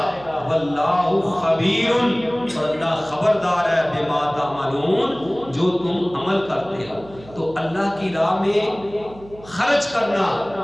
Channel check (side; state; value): right; noise; hum, 20 dB below the sound